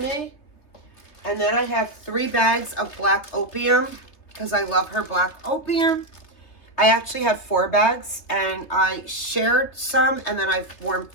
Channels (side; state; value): right; late; 3.3 ms